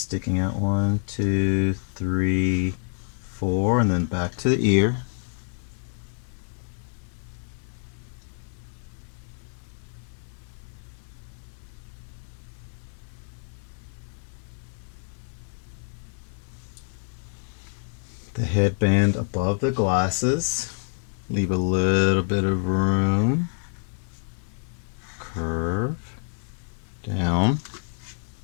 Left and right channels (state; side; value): silent; right; digital silence